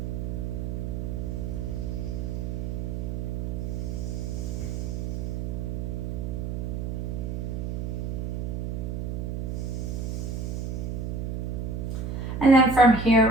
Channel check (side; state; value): right; noise; hum, 2 dB below the sound